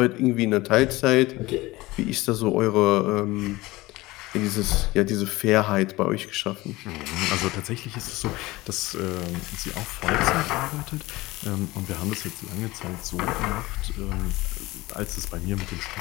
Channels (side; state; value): right; quieter; 19.9 dB